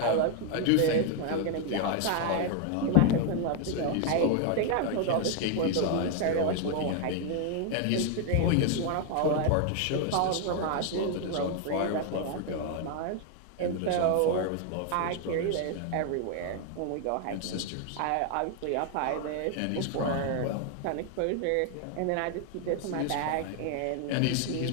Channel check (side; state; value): both; different; correlation 0.00